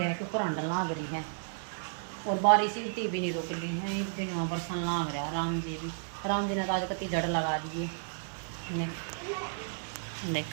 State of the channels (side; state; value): left; silent; digital silence